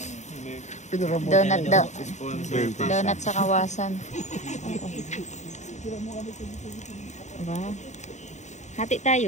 Donut daw. Donut sa Kawasan. Wow. Hati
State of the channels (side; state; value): right; late; 0.34 ms